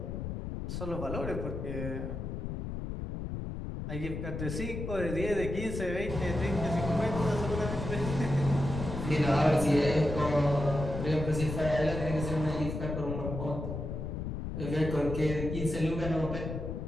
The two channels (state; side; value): noise; left; rumble, 5 dB below the sound